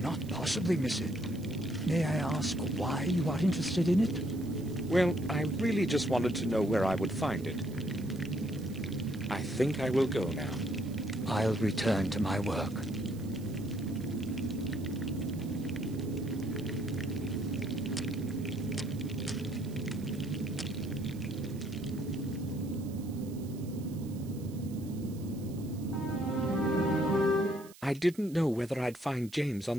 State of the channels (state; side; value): noise; right; hiss, 22 dB below the sound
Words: possibly miss it. May I ask why you are interested in it? Well, I really just wanted to know where I would find it. I think I will go now. I'll return to my work. I didn't know whether I'd find James